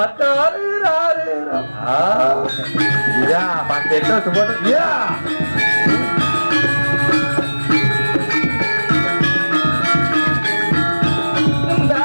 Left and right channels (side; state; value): both; inverted; correlation -1.00